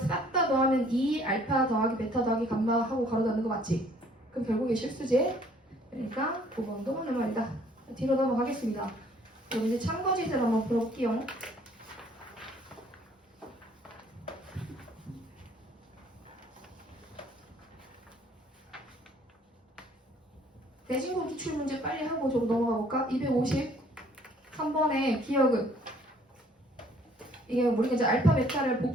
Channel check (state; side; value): normal; both; correlation 0.59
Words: 다 더하면 2 알파 더하기 베타 더하기 감마 하고 가로 닫는 거 맞지? 그럼 결국에 실수지? 그러니까 9번도 맞는 말이다. 뒤로 넘어가겠습니다. 그럼 이제 참거짓을 한번 풀어볼게요. 대신고 기출문제 빨리 하고 저거 넘어가 볼까? 253번의 기억은 이게 우리가 이제 알파 베타를